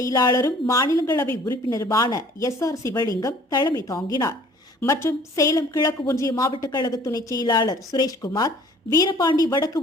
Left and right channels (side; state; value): both; normal; correlation 0.53